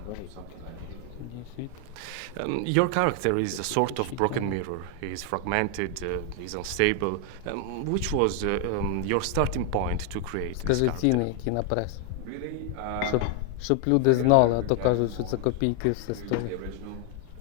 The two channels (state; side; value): different; both; correlation 0.00